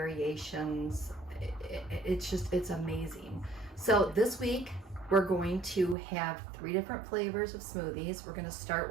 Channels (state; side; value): drops out; left; at 6.0 s